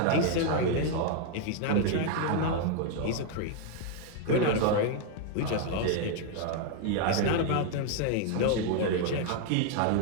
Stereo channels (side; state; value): both; different; correlation 0.00